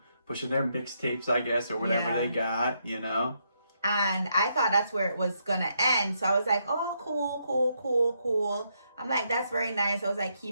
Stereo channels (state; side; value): inverted; both; correlation -0.78